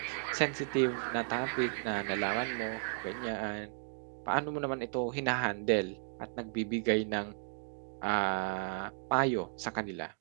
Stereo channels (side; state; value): left; silent; digital silence